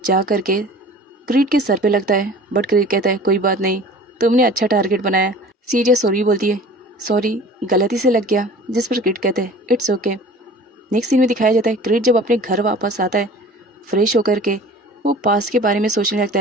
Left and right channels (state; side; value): normal; both; correlation 0.43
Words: जा करके क्रीट के सर पे लगता है, बट क्रीट कहता है, कोई बात नहीं, तुमने अच्छा टारगेट बनाया। सीरिया सॉरी बोलती है, सॉरी गलती से लग गया। जिस पर क्रीट कहते हैं, इट्स ओके। नेक्स्ट सीन में दिखाया जाता है क्रीट जब अपने घर वापस आता है फ्रेश होकर के वो पास के बारे में सोचने लगता